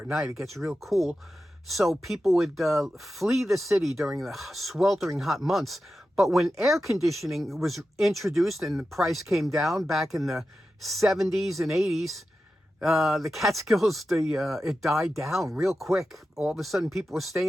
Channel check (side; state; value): both; normal; correlation 0.92